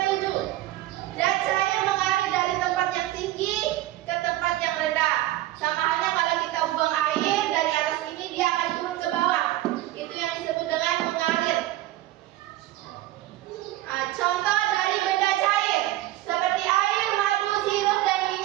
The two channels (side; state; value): left; quieter; 15.6 dB